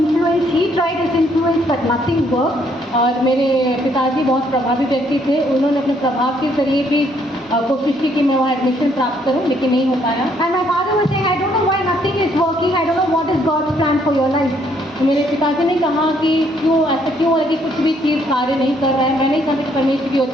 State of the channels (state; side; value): normal; both; correlation 0.68